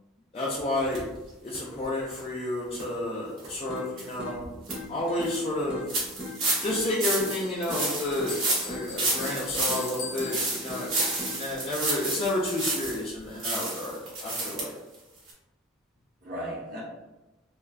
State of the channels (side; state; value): both; normal; correlation 0.31